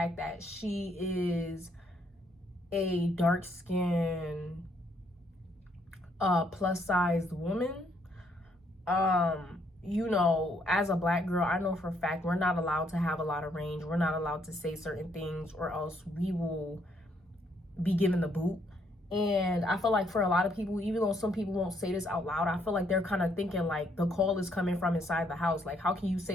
that she is a dark-skinned, plus-sized woman. You know, as a black girl, I know for a fact we're not allowed to have a lot of range. We're not allowed to say certain things, or else we will be given the boot. And I feel like for a lot of people, even though some people won't say this out loud, I feel like they're kind of thinking like the call is coming from inside the house. Like, how can you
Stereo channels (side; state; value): both; normal; correlation 0.71